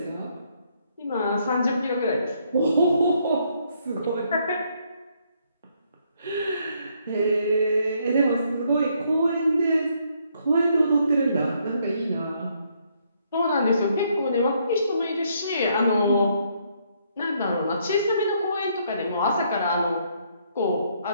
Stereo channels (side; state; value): both; inverted; correlation -0.71